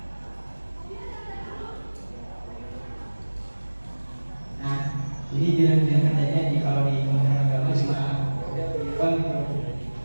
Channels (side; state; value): both; inverted; correlation -1.00